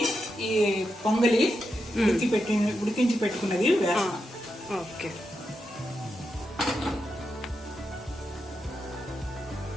ఈ పొంగలి ఉడికించి పెట్టుకున్నది వేస్తాం. ఓకే,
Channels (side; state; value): both; normal; correlation 0.86